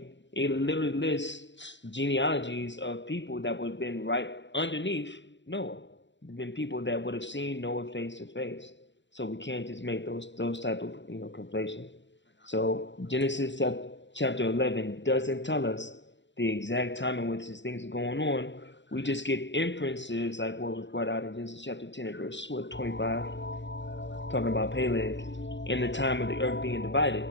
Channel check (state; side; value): late; right; 0.53 ms